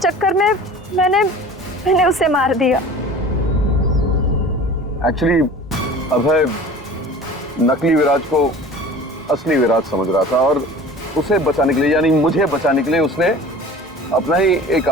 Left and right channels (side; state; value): both; normal; correlation 0.41